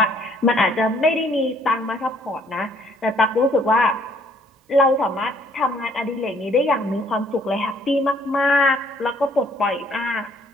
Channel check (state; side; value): normal; both; correlation 0.63